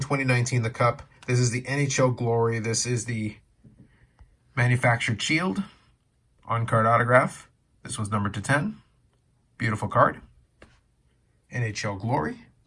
the Cup. This is the NHL Glory. This is the manufactured shield. On-card autograph. This one's numbered to 10. Beautiful card. NHL Glory.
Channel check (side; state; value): both; identical; correlation 1.00